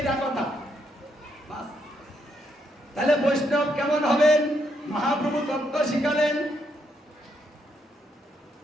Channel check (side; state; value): both; normal; correlation 0.77